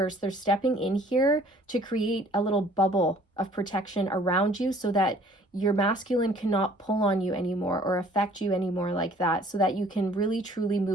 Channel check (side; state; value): both; normal; correlation 0.55